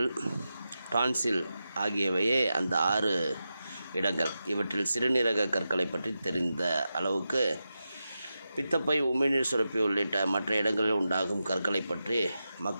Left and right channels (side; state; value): both; inverted; correlation -0.90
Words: டான்சில் ஆகியவையே அந்த 6 இடங்கள். இவற்றில் சிறுநீரக கற்களை பற்றி தெரிந்த அளவுக்கு பித்தப்பை, உமிழ்நீர் சுரப்பி உள்ளிட்ட மற்ற இடங்களில் உண்டாகும் கற்களை பற்றி